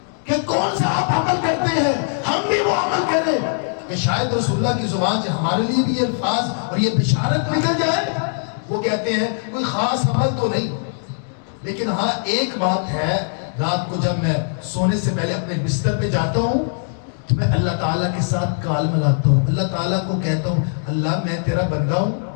کہ کون سا آپ عمل کرتے ہیں، ہم بھی وہ عمل کریں کہ شاید رسول اللہ کی زبان سے ہمارے لیے بھی یہ الفاظ اور یہ بشارت نکل جائے۔ وہ کہتے ہیں کوئی خاص عمل تو نہیں، لیکن ہاں ایک بات ہے، رات کو جب میں سونے سے پہلے اپنے بستر پہ جاتا ہوں تو میں اللہ تعالیٰ کے ساتھ کال ملاتا ہوں، اللہ تعالیٰ کو کہتا ہوں اللہ میں تیرا بندہ ہوں،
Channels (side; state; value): right; silent; digital silence